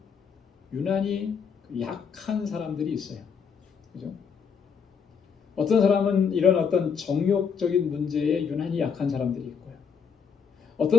유난히 약한 사람들이 있어요. 그죠? 어떤 사람은 이런 어떤 정욕적인 문제에 유난히 약한 사람들이 있고요.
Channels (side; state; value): right; quieter; 6.5 dB